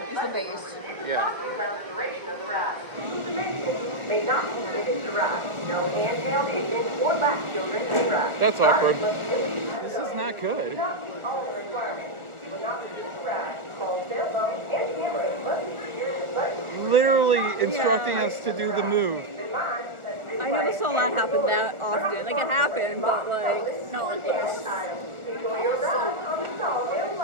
It's the base. Yeah. May not be given to ride. No handheld engine or lap children may ride. That's awkward. This is not good. Do not meet all the requirements. You will not be able to ride. Call cell phone and camera must be secured in button. Literally instructing us to do the move. I never saw that happen that often. Like, it happened, but, like, not like this. Enjoy your ride on the Sawville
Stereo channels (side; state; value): left; late; 1.4 ms